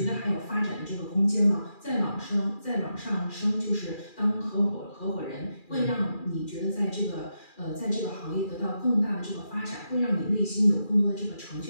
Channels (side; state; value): right; late; 2.4 ms